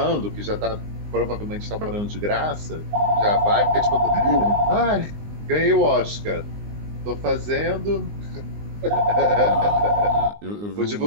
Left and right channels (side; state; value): left; late; 19 ms